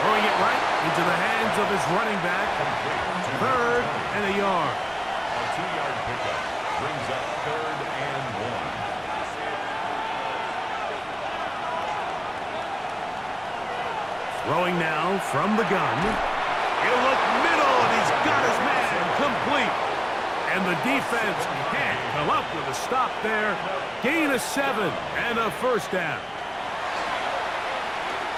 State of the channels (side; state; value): both; identical; correlation 1.00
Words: Throwing it right into the hands of his running back. 3rd and a yard. A 2-yard pickup brings up 3rd and 1. Throwing now from the gun. He'll look middle, and he's got his man complete. And the defense can't come up with a stop there. Gain of 7 and a 1st down.